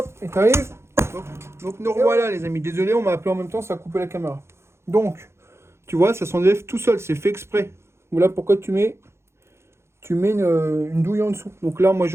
et tu arrives. Donc nous revoilà, les amis. Désolé, on m'a appelé en même temps, ça a coupé la caméra. Donc, tu vois, ça s'enlève tout seul. C'est fait exprès. Voilà pourquoi tu mets une douille en dessous. Donc là, moi,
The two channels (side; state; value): left; late; 0.13 ms